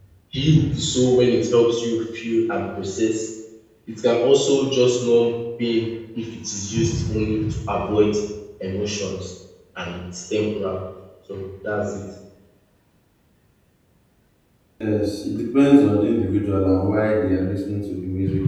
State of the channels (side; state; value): both; identical; correlation 1.00